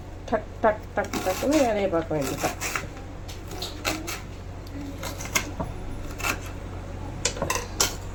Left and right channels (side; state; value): both; identical; correlation 1.00